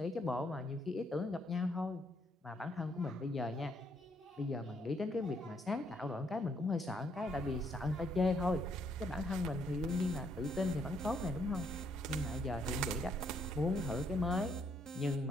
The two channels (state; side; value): normal; both; correlation 0.71